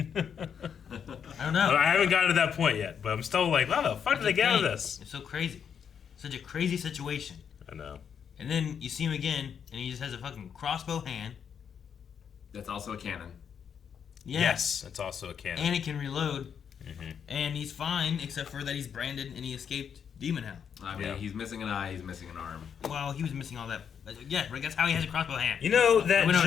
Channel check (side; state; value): right; quieter; 7.6 dB